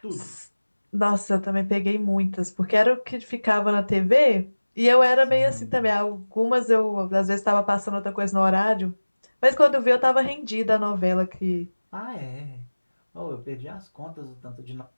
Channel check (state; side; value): inverted; both; correlation -1.00